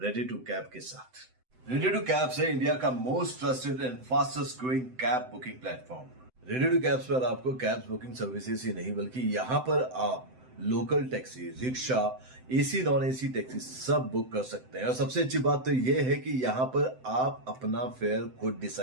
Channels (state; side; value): late; left; 7.8 ms